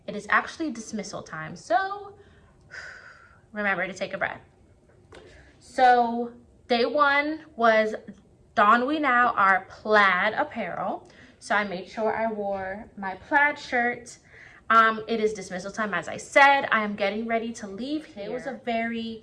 It is actually dismissal time, so remember to take a breath. So day one was don we now our plaid apparel. So I made sure I wore my plaid shirt. It is dismissal time, as I said. I am getting ready to leave here. It was a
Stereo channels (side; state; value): both; identical; correlation 1.00